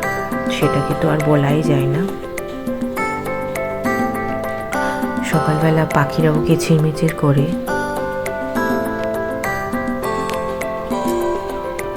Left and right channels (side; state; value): both; identical; correlation 1.00